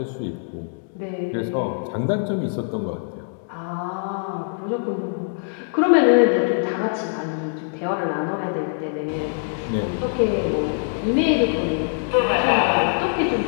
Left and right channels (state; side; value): silent; right; digital silence